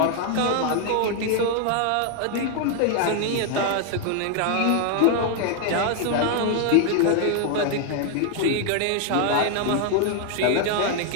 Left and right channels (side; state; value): both; different; correlation 0.00